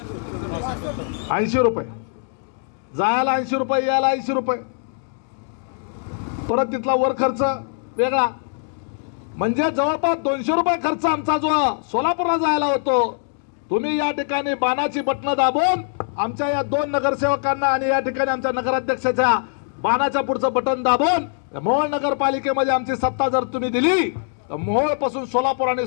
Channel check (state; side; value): silent; right; digital silence